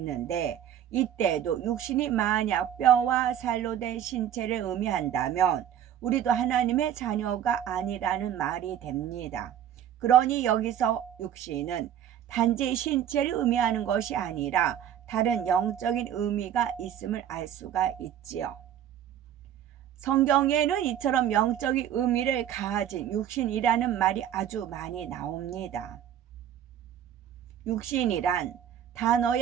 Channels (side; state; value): left; quieter; 10.3 dB